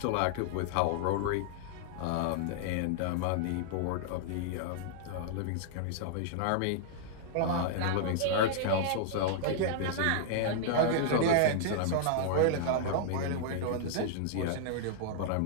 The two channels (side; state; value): both; different; correlation -0.01